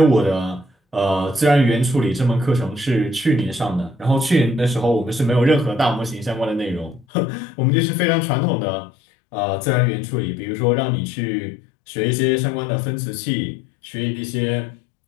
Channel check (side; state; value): right; drops out; at 7.1 s